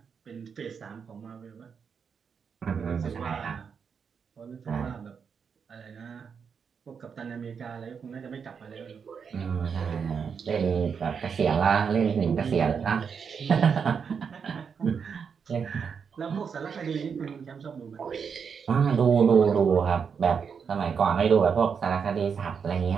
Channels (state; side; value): quieter; left; 6.4 dB